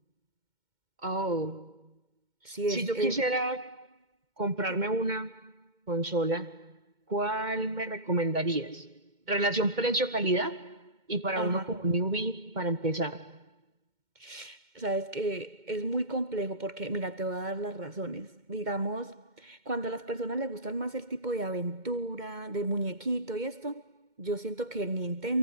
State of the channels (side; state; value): left; late; 2.2 ms